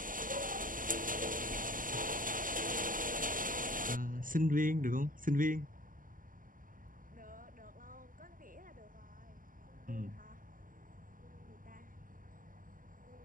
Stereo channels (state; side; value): late; left; 0.40 ms